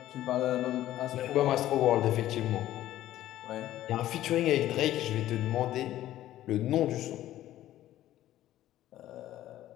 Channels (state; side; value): quieter; right; 13.7 dB